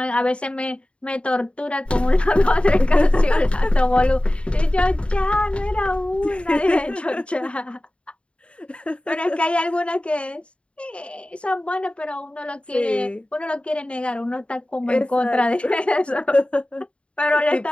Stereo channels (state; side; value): late; right; 0.059 ms